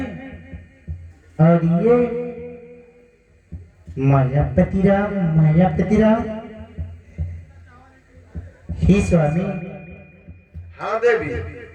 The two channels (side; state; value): both; identical; correlation 1.00